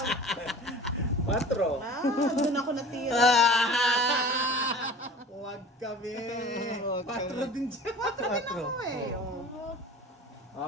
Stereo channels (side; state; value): both; normal; correlation 0.41